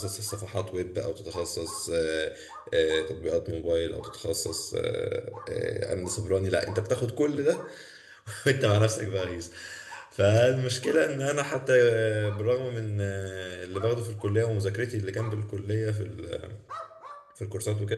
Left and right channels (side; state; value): both; identical; correlation 1.00